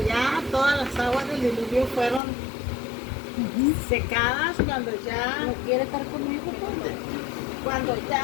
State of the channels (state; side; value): drops out; right; at 2.2 s